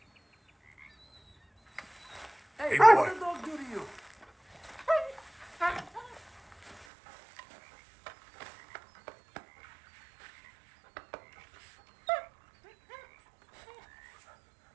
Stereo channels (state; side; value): drops out; left; at 6.9 s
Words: Hey, boy. What did the dog do to you?